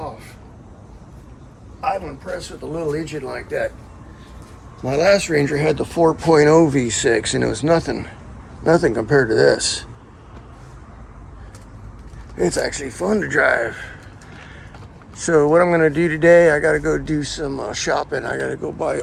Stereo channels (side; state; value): both; identical; correlation 1.00